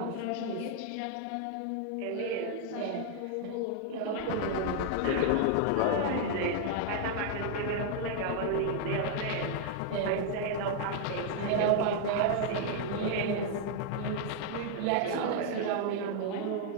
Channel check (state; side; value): different; both; correlation 0.00